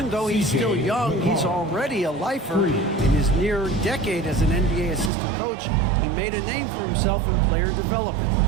though he's still young, he's already a lifer. In his near decade as an NBA assistant coach, he made a name for himself in player development.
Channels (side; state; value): left; drops out; at 5.1 s